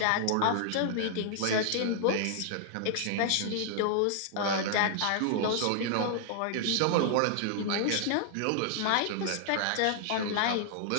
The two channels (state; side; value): different; both; correlation 0.00